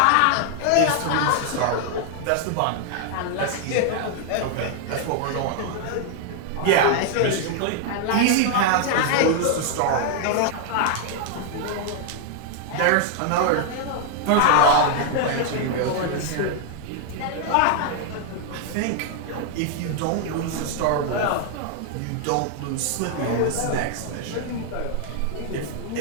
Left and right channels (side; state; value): both; different; correlation 0.00